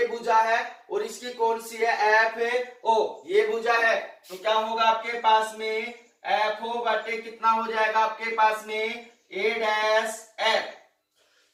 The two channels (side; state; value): both; identical; correlation 1.00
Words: भुजा है और इसकी कौन सी है, FO ये भुजा है, तो क्या होगा आपके पास में FO बटे कितना हो जाएगा आपके पास में A डैश F।